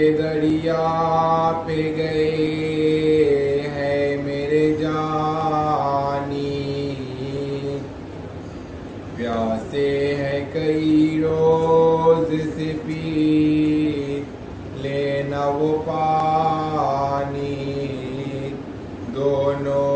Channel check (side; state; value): both; identical; correlation 1.00